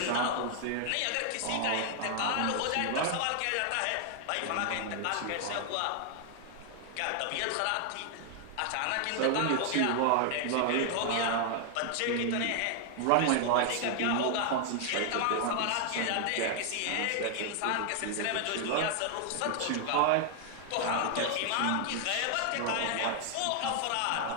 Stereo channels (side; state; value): both; different; correlation 0.00